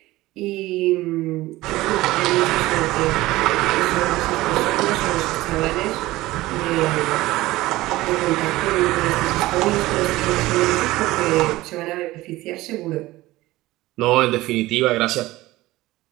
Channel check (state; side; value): quieter; left; 18.0 dB